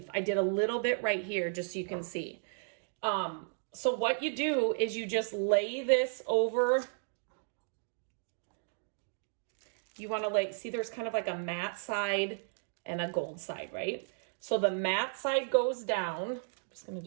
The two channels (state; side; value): silent; left; digital silence